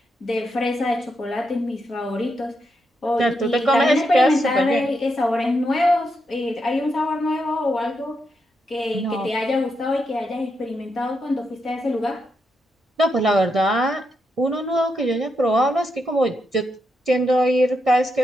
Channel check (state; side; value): normal; both; correlation 0.83